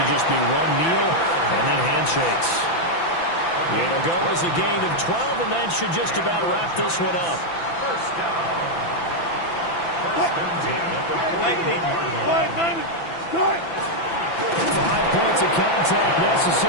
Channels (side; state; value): right; late; 6.0 ms